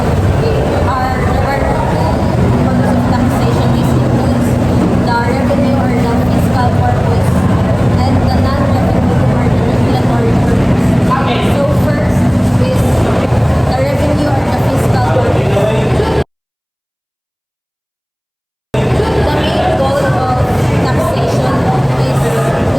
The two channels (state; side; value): identical; both; correlation 1.00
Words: is includes the revenue or the fiscal purpose and the non-revenue or the regulatory purpose. So first is the revenue or the fiscal purpose. The main goal of taxation is